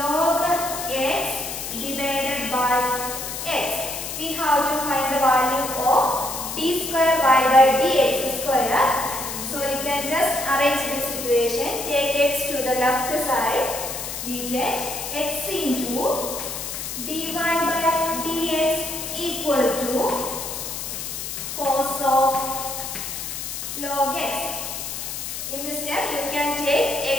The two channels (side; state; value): left; noise; hiss, 6 dB below the sound